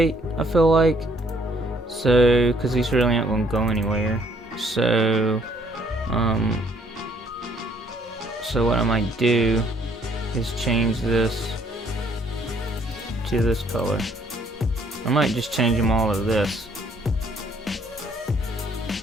I feel like. So, because these really aren't going to go anywhere. So, so what I might do is change this to this color. I might just change them all to this.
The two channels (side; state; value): both; normal; correlation 0.65